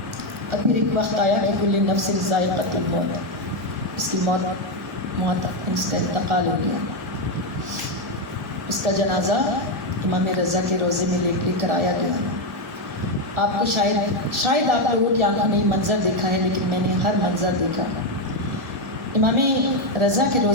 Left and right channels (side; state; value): both; normal; correlation 0.06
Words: اب پھر ایک وقت آیا کہ کل نفس ذائقۃ الموت، اس کی موت اس کا انتقال ہو گیا۔ اس کا جنازہ امام رضا کے روضے میں لے کر آیا گیا۔ آپ کو شاید آپ لوگوں کی آنکھوں نے منظر دیکھا ہے، لیکن میں نے ہر منظر دیکھا۔ امام رضا کے